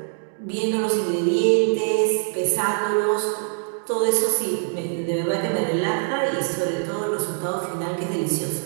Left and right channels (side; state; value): left; silent; digital silence